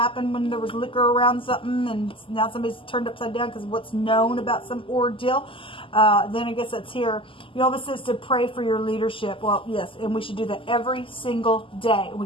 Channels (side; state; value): right; late; 0.25 ms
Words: when there was liquor around something, and now somebody's turned upside down because of what's known about some ordeal. Then I guess that's here. YHVH says to pray for your leadership. Well, yes, and we should do that every single day.